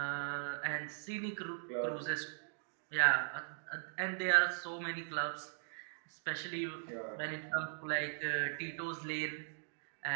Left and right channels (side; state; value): left; silent; digital silence